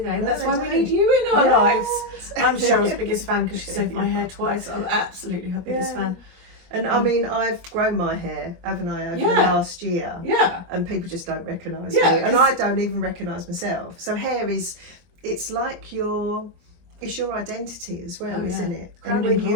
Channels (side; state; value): left; late; 23 ms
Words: No, That's they why don't. we need you in our lives. Yes. I'm Cheryl's biggest fan because she saved my hair twice. I'm absolutely her biggest fan. And I mean, I've grown my hair, haven't I, over the last year? Yeah. And people just don't recognise me. And I don't even recognise myself. So hair is, it's like it's your identity as well, isn't it? And when